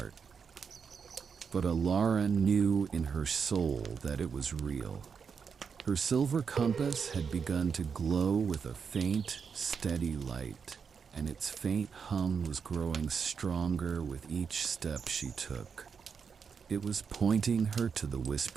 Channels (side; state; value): left; quieter; 6.2 dB